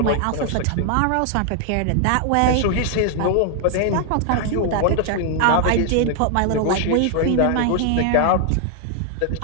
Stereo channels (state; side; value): different; both; correlation 0.00